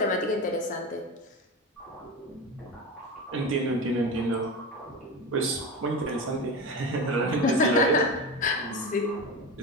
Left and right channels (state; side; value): normal; both; correlation 0.23